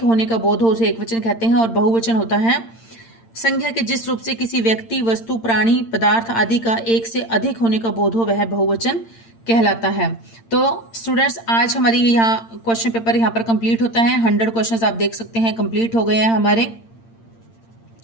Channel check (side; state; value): right; late; 8.8 ms